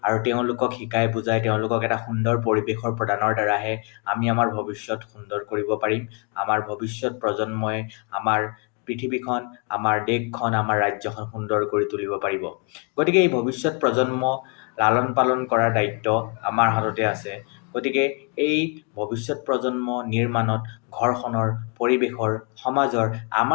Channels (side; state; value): right; quieter; 36.3 dB